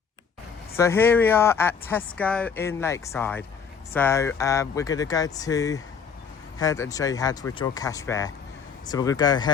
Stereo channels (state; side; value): quieter; right; 6.4 dB